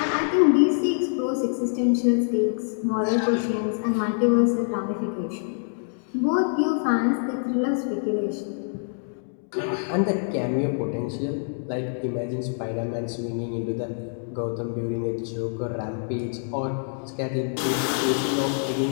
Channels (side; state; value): right; silent; digital silence